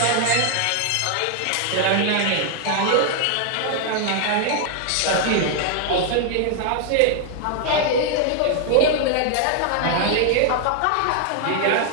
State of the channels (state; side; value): different; both; correlation 0.00